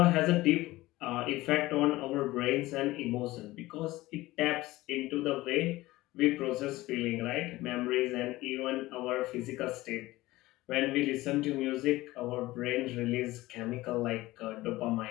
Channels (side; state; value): right; quieter; 18.4 dB